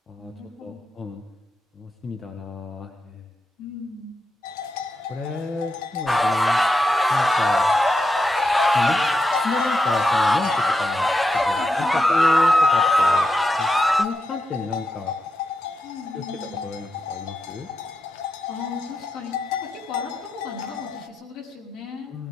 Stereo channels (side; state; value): both; normal; correlation 0.86